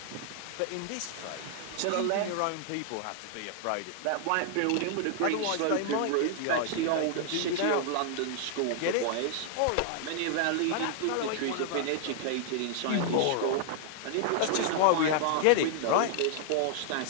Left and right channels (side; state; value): both; different; correlation -0.01